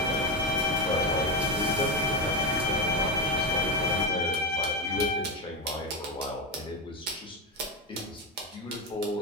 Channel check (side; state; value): both; normal; correlation 0.12